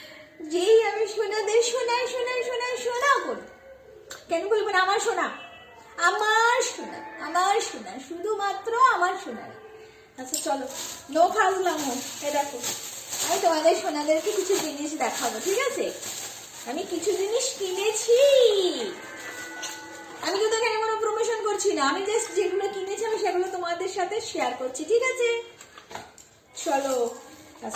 যেই আমি সোনাদের শোনাই শোনাই শোনাই শোনা করি। কেন বলবো না আমার সোনা, আমার সোনা, আমার সোনা, শুধুমাত্র আমার সোনা। আচ্ছা চলো, নো ফাজলাম। এ দেখো, আমি তোমাদের সোনাদেরকে কিছু জিনিস দেখাবো, ঠিক আছে? আমি কিছু জিনিস কিনেছি, আমি কিন্তু এখানে কোনো প্রমোশন করছি না, আমি জাস্ট যেগুলো কিনেছি আমি সেগুলো তোমাদের সাথে শেয়ার করছি, ঠিক আছে? চলো।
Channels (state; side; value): identical; both; correlation 1.00